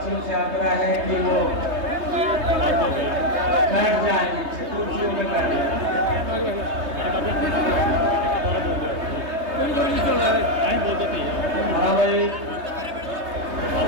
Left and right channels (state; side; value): late; left; 3.2 ms